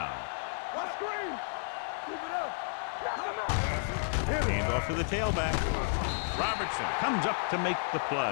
Let's screen. Keep it up. Hand off to the tailback. Robertson comes up to make the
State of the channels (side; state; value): right; silent; digital silence